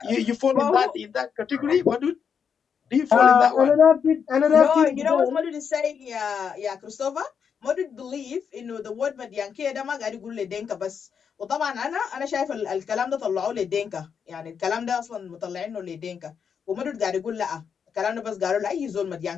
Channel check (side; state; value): right; quieter; 6.9 dB